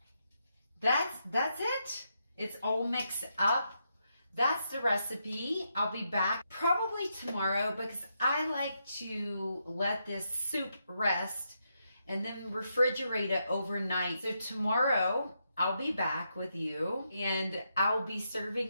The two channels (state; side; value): inverted; both; correlation -0.82